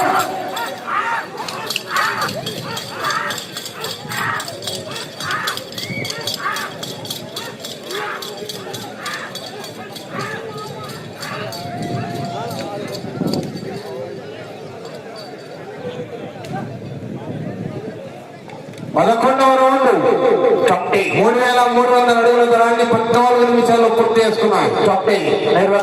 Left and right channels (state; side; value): identical; both; correlation 1.00